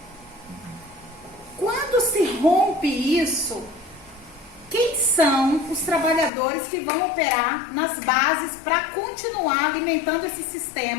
Quando se rompe isso, quem são os trabalhadores que vão operar nas bases para continuar alimentando esse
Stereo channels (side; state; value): right; drops out; at 6.3 s